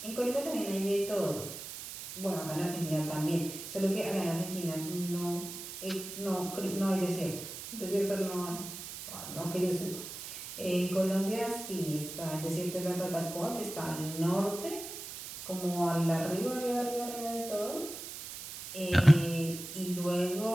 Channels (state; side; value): noise; right; hiss, 10 dB below the sound